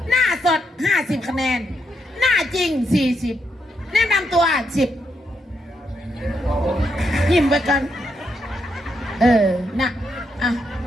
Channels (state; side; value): normal; both; correlation 0.80